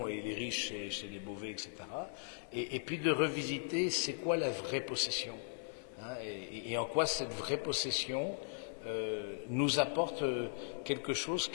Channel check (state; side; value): silent; right; 52 dB below the other